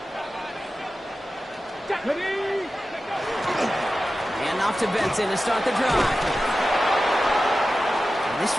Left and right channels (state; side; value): normal; both; correlation 0.94